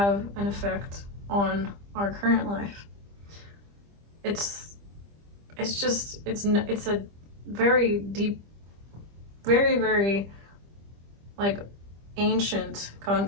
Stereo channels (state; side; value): late; left; 25 ms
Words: an effect on our current life. It's a very deep, very, very like ancient